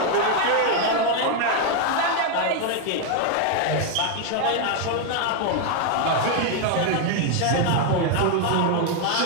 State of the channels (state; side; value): different; both; correlation 0.01